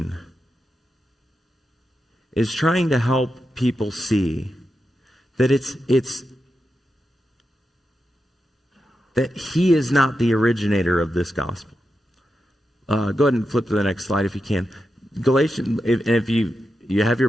is trying to help people see that it's that he is not the originator of this gospel. Go ahead and flip to the next slide if you can. Galatians, if you have your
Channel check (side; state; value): both; normal; correlation 0.88